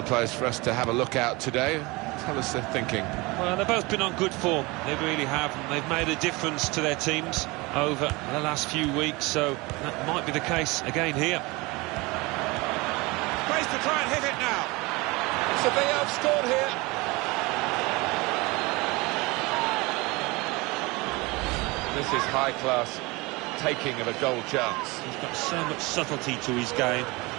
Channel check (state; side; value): quieter; left; 24.1 dB